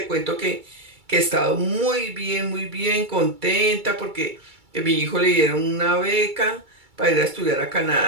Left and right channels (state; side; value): late; left; 2.3 ms